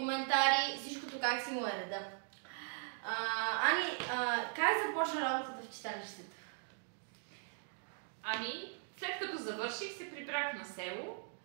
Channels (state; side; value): silent; left; 52 dB below the other